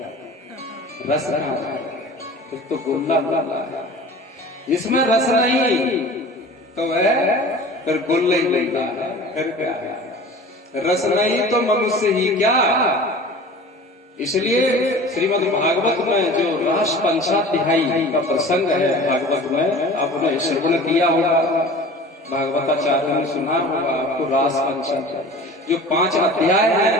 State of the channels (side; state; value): both; normal; correlation 0.40